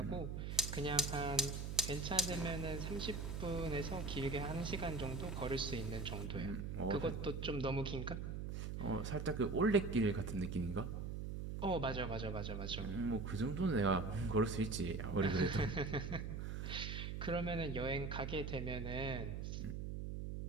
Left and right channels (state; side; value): noise; right; hum, 4 dB below the sound